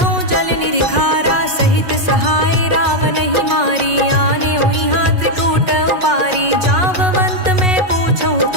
जल निरिखारा सहित सहाय रावण ही मारी आने उइहा त्रिकूट उपारी जाववंत मैं पूछऊं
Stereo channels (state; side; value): late; left; 5.5 ms